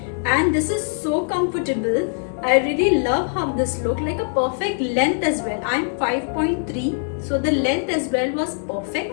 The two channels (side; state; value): right; silent; digital silence